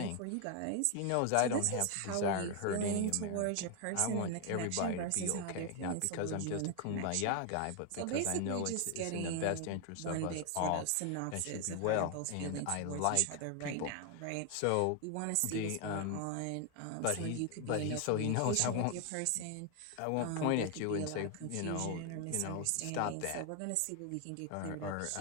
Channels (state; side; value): different; both; correlation 0.01